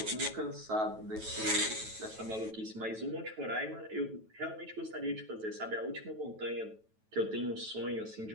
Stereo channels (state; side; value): late; left; 9.2 ms